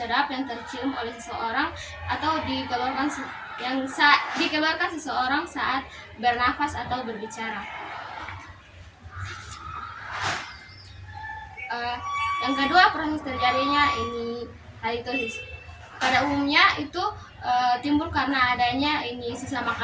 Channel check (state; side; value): identical; both; correlation 1.00